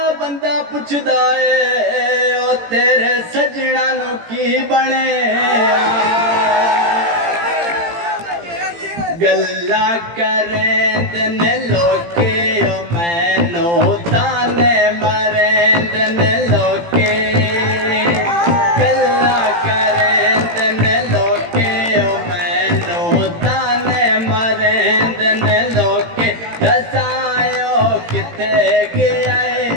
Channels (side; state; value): left; late; 18 ms